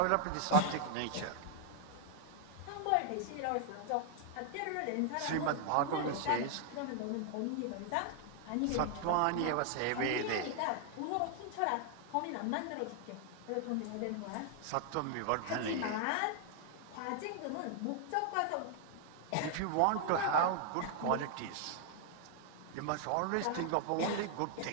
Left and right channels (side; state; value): both; different; correlation 0.00